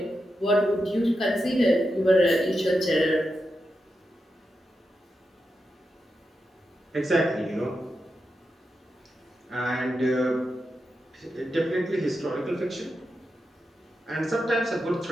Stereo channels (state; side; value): normal; both; correlation 0.88